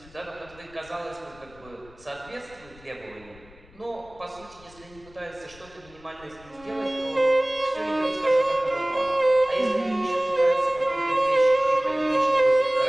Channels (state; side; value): noise; left; rumble, 24 dB below the sound